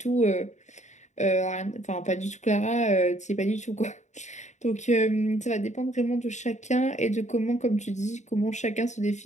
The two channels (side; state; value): right; late; 0.34 ms